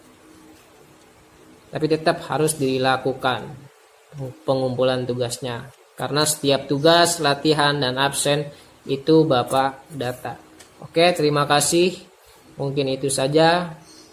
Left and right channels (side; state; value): both; identical; correlation 1.00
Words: Tapi tetap harus dilakukan pengumpulan tugasnya. Karena setiap tugas, latihan, dan absen itu Bapak data. Oke, terima kasih. Mungkin itu saja